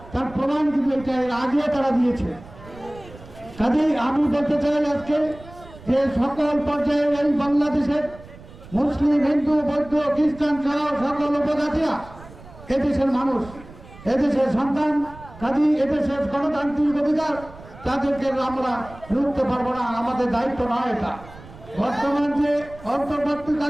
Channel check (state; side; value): noise; right; rumble, 19 dB below the sound